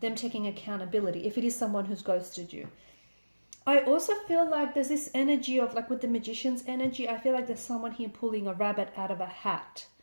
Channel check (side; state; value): both; inverted; correlation -1.00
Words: them taking accountability if it is someone who's ghosted you. I also feel like there's this energy of, like with the magician's energy, I feel like there's someone here pulling a rabbit out of a hat,